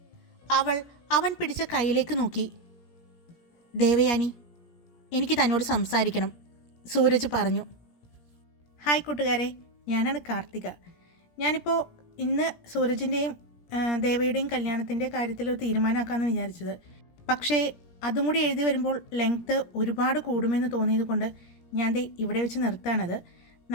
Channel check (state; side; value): late; right; 17 ms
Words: അവൻ പിടിച്ച കയ്യിലേക്ക് നോക്കി. ദേവയാനി, എനിക്ക് തന്നോട് സംസാരിക്കണം, സൂരജ് പറഞ്ഞു. ഹായ് കൂട്ടുകാരെ, ഞാനാണ് കാർത്തിക. ഞാനിപ്പോൾ ഇന്ന് സൂരജിൻ്റെയും ദേവയുടെയും കല്യാണത്തിൻ്റെ കാര്യത്തിൽ ഒരു തീരുമാനമാക്കാമെന്ന് വിചാരിച്ചത്. പക്ഷേ അതും കൂടി എഴുതി വരുമ്പോൾ ലെങ്ത്ത് ഒരുപാട് കൂടുമെന്ന് തോന്നിയത് കൊണ്ട് ഞാൻ ഇവിടെ വെച്ച് നിർത്താണത്.